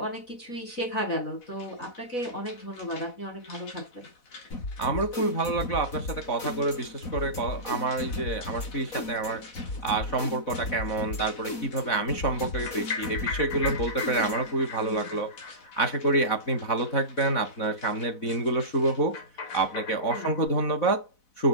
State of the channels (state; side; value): late; right; 4.0 ms